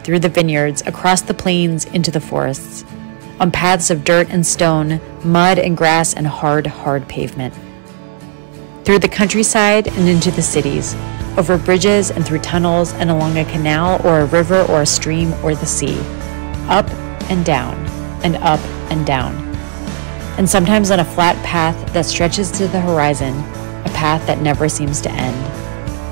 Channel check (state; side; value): silent; left; digital silence